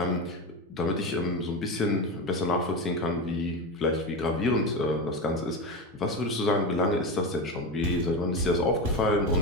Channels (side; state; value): both; normal; correlation 0.19